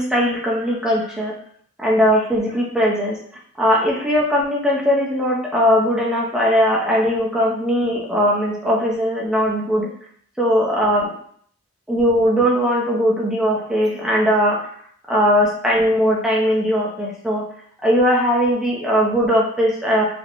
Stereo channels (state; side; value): normal; both; correlation 0.49